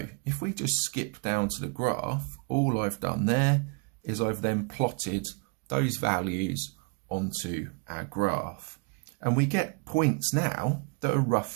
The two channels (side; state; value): left; quieter; 32.4 dB